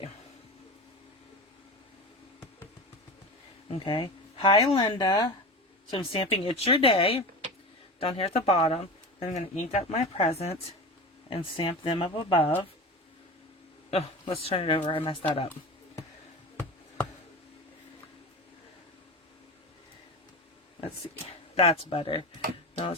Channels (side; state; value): both; normal; correlation 0.28